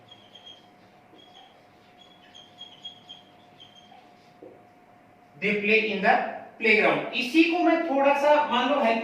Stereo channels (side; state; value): both; identical; correlation 1.00